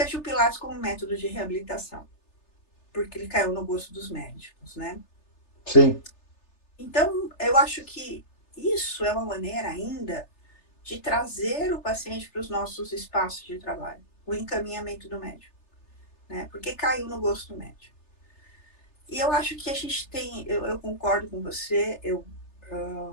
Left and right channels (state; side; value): late; right; 3.3 ms